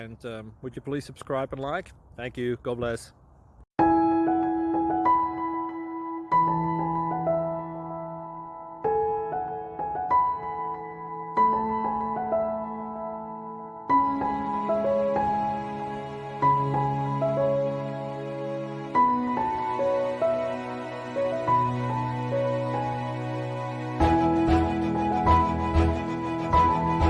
would you please subscribe and like? Thank you. God bless.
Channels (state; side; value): identical; both; correlation 1.00